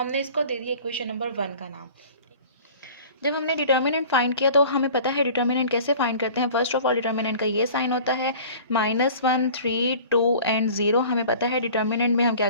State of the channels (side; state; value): both; inverted; correlation -0.44